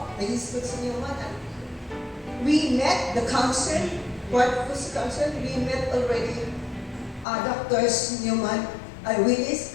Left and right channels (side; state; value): right; drops out; at 7.2 s